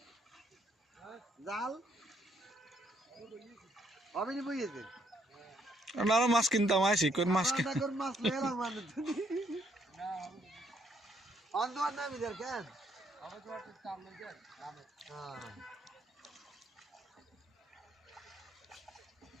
জাল অবিনি বইয়েছে আরো মাছ কিনতাম আইসি কোন মাছ কোন মাছ লেরা মানে তুমি অন্ধকার নামি দের কেন হ্যাঁ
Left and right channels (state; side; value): normal; both; correlation 0.70